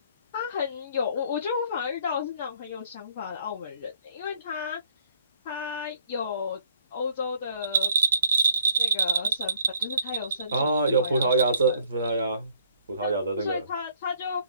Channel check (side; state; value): both; inverted; correlation -0.59